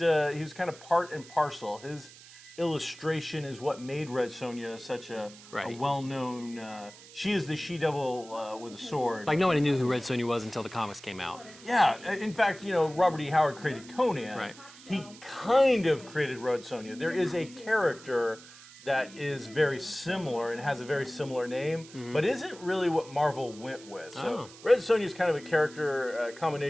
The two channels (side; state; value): right; noise; hiss, 19 dB below the sound